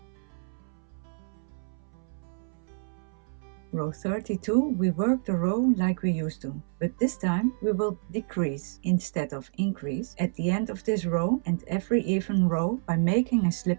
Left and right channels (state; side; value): silent; left; 59 dB below the other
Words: Row 32, we work the row like we used to, but this time we will decrease instead of increase at the end of this row and every even row by making a